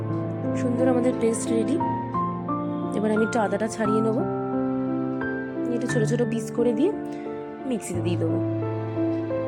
সুন্দর আমাদের পেস্ট রেডি। এবার আমি একটু আদাটা ছাড়িয়ে নেবো, একটু ছোট ছোট পিস করে দিয়ে মিক্সিতে দিয়ে দেবো।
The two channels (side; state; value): both; identical; correlation 1.00